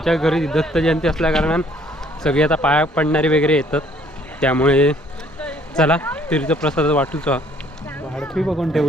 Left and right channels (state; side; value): normal; both; correlation 0.61